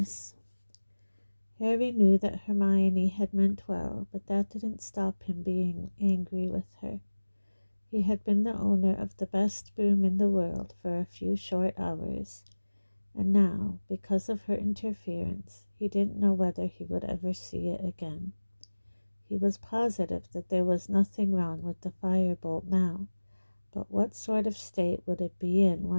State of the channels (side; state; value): both; inverted; correlation -1.00